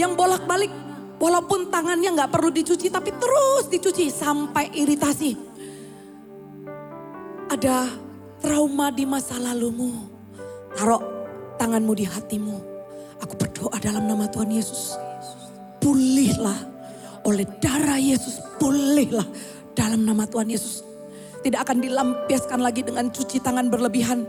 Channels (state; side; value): identical; both; correlation 1.00